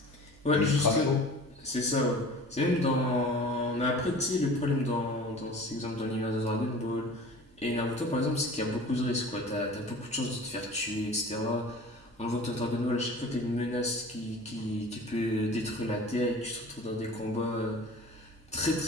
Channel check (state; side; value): normal; both; correlation 0.41